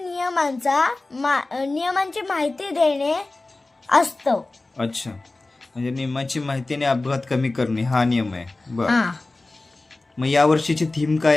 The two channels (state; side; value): quieter; right; 3.1 dB